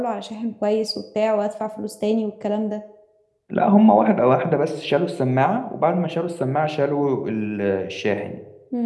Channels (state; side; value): identical; both; correlation 1.00